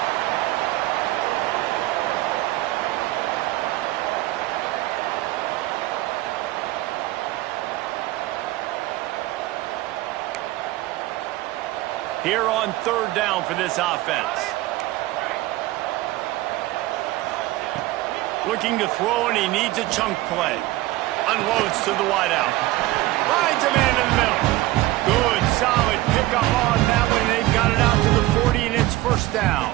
Here on 3rd down for this offense. Looking to throw, and he needs a chunk play. Unloads to the wideout. Finds a man in the middle. Good, solid pickup on that one. They've got it out to the 40, and it's 1st down.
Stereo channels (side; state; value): left; quieter; 17.6 dB